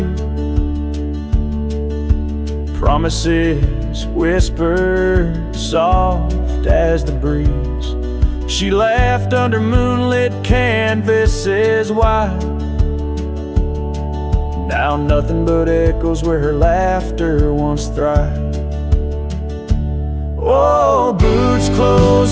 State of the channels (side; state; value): both; identical; correlation 1.00